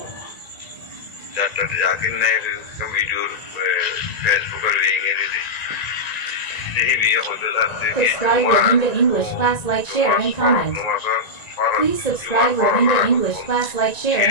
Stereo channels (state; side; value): late; right; 1.9 ms